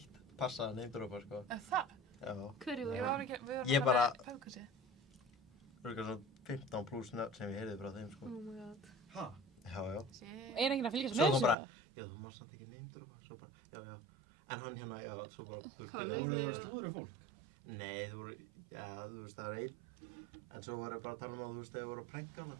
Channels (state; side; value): drops out; left; at 11.6 s